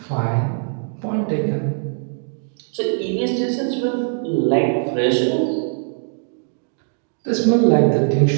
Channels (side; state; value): left; silent; digital silence